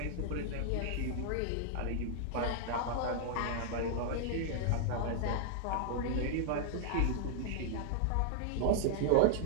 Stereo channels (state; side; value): different; both; correlation -0.01